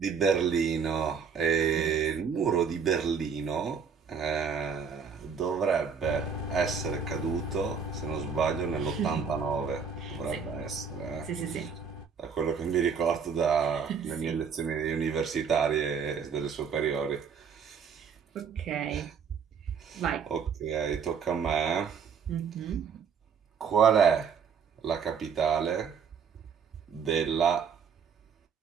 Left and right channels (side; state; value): left; quieter; 6.3 dB